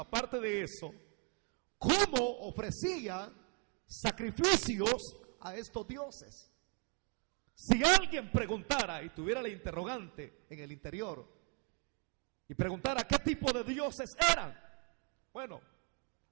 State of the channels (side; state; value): left; quieter; 38.4 dB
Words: de eso, cómo ofrecían sacrificios a estos dioses. Si alguien preguntara y tuviera la interrogante en el interior y preguntara qué tipo de dioses eran, bueno,